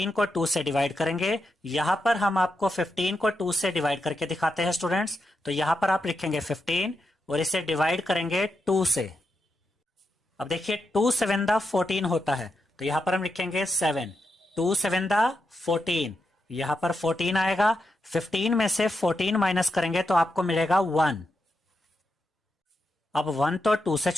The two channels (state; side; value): normal; both; correlation 0.85